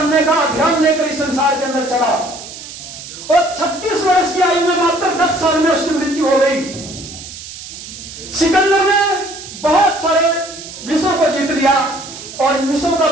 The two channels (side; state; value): right; noise; hiss, 13 dB below the sound